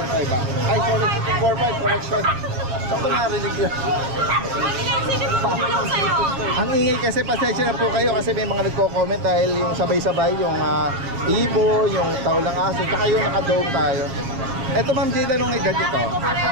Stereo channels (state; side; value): late; left; 7.5 ms